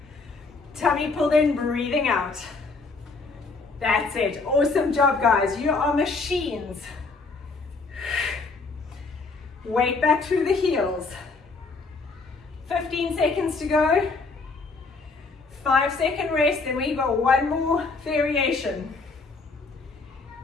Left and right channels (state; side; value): quieter; right; 4.0 dB